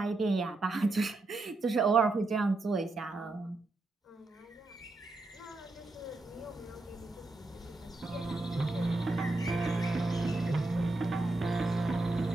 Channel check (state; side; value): quieter; left; 3.0 dB